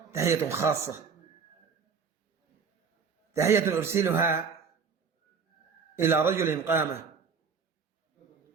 تحية خاصة، تحية أرسلها إلى رجل قام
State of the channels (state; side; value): quieter; left; 5.8 dB